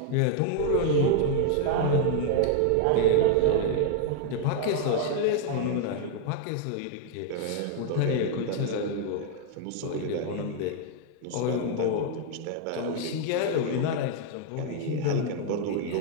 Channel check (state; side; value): different; both; correlation 0.00